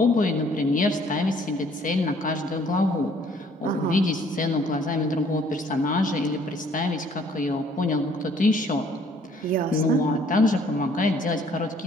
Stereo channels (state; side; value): normal; both; correlation 0.60